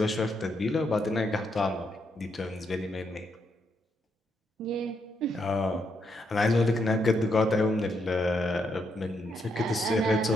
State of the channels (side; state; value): both; normal; correlation 0.78